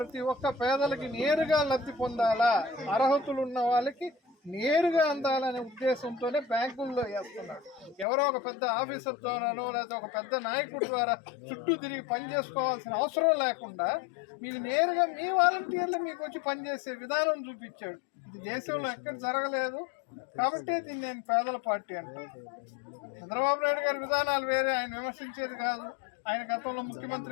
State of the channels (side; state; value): right; drops out; at 8.1 s